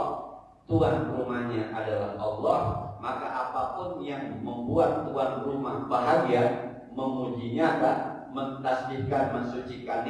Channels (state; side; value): identical; both; correlation 1.00